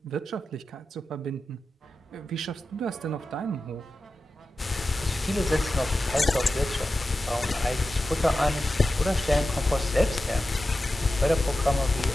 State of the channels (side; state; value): both; normal; correlation 0.92